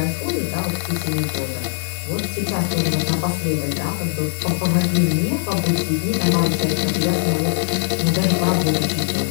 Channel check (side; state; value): right; silent; 61 dB below the other